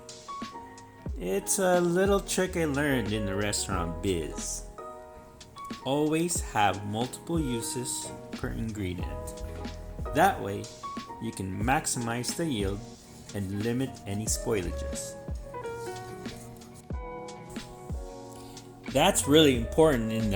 It's a little trick I learned in the restaurant biz. Always have multiple uses per ingredient. That way, you can maximize the yield and limit any spoilages. That's really important in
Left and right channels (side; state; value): both; identical; correlation 1.00